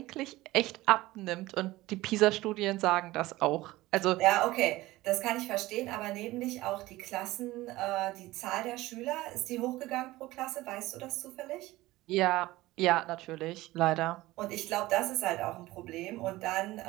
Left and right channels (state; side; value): quieter; left; 18.2 dB